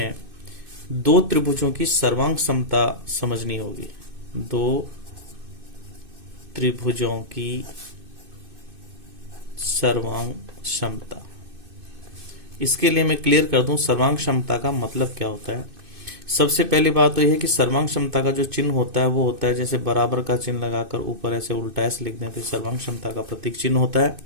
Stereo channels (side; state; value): left; late; 2.6 ms